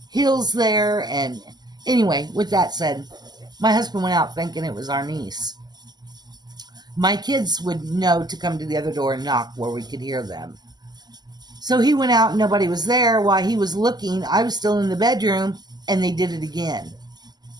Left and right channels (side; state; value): left; late; 0.20 ms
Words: hills there. And anyway, with that said, my husband went out thinking it was our niece. My kids would know to come to the other door and knock where we could hear them. So he went out and nobody was there. While he was looking, I was still in the bedroom, and they did it again.